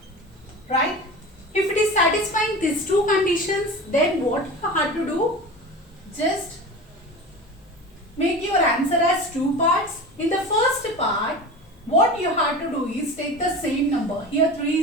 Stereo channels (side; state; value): both; normal; correlation 0.32